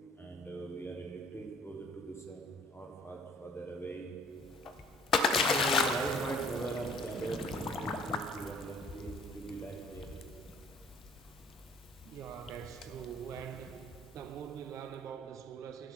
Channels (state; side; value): normal; both; correlation 0.55